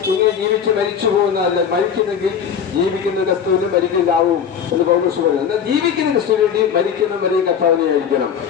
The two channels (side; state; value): right; quieter; 7.7 dB